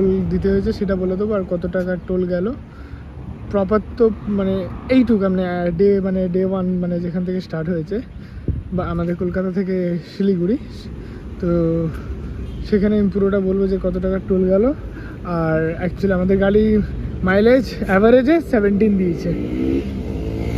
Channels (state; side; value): identical; both; correlation 1.00